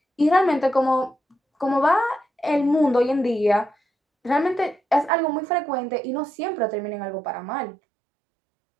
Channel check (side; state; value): left; drops out; at 5.1 s